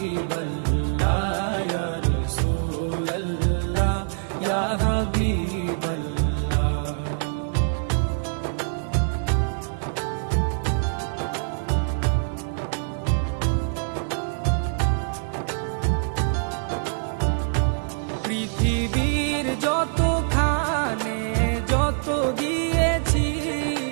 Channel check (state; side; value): silent; left; 56 dB below the other